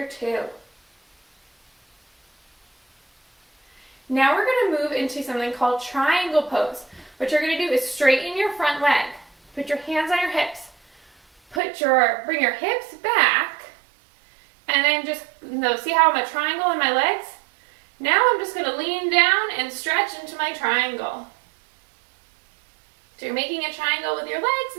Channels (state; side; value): drops out; left; at 11.6 s